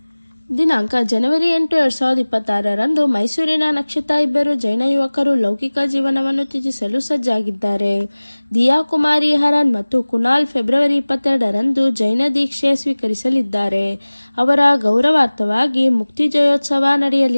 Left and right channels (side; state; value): both; inverted; correlation -1.00